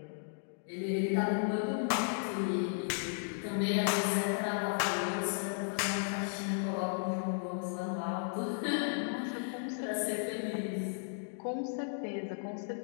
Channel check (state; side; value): silent; right; digital silence